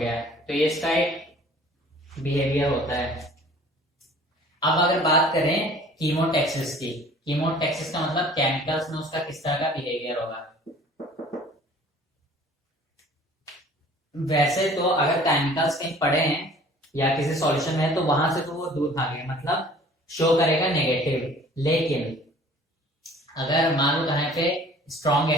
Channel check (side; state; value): both; normal; correlation 0.50